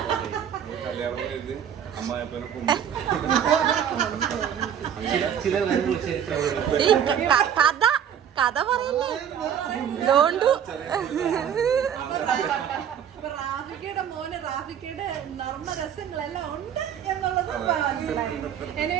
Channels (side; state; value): left; quieter; 8.9 dB